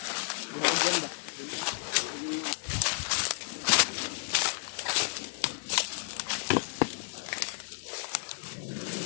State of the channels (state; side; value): silent; right; digital silence